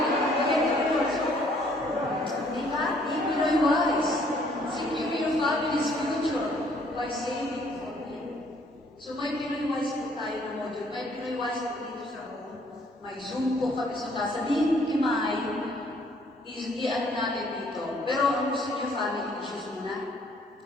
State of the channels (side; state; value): both; normal; correlation 0.62